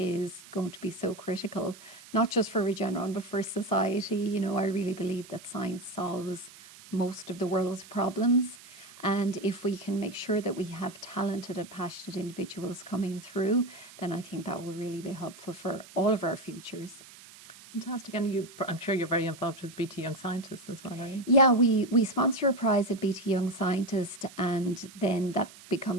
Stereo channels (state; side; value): noise; right; hiss, 20 dB below the sound